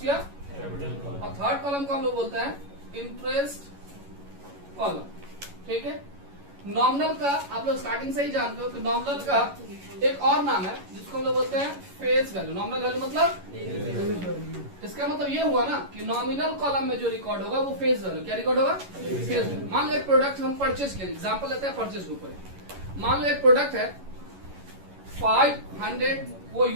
या कैपिटल। और थर्ड कॉलम को हम लोग बोलते हैं इंटरेस्ट कॉलम, ठीक है। नॉमिनल का आप लोग स्टार्टिंग से ही जानते हो कि नॉमिनल का एक और नाम है जिसको हम लोग बोलते हैं फेस वैल्यू। नॉमिनल वैल्यू मतलब, इसका मतलब ये हुआ ना कि नॉमिनल कॉलम में जो रिकॉर्ड होगा वो फेस वैल्यू, क्या रिकॉर्ड होगा, फेस वैल्यू। मान लो एक प्रोडक्ट हम परचेज किए, एग्जांपल लेते हैं परचेज के ऊपर। मान लो एक प्रोडक्ट है 500 वो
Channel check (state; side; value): late; left; 11 ms